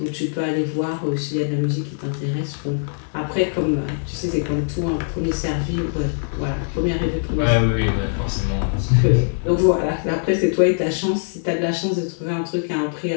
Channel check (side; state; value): right; silent; 63 dB below the other